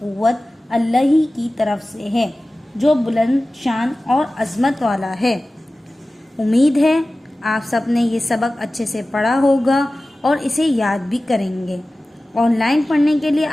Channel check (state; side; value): normal; both; correlation 0.96